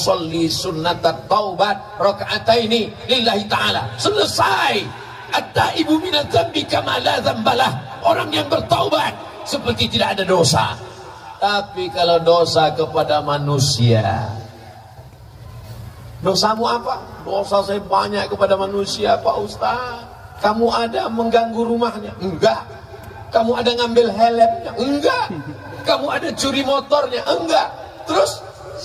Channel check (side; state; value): both; identical; correlation 1.00